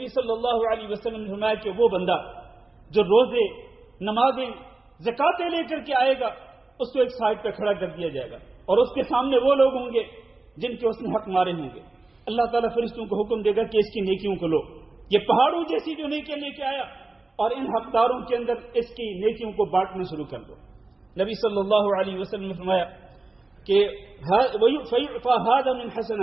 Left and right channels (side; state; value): left; quieter; 3.2 dB